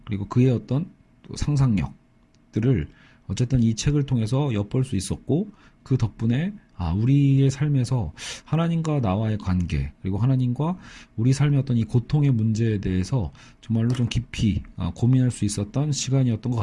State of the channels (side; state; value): both; identical; correlation 1.00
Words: 그리고 그의 어떤 상상력들을 어쨌든 이 책을 통해서 엿볼 수 있었고, 그 덕분에 우리의 삶에서 하나님과 나와의 관계, 그리고 하나님과 우리 삶의 어떤 이 고통의 문제에 대해서 정말로 좀 깊이 고민할 수 있었던 시간이었던 것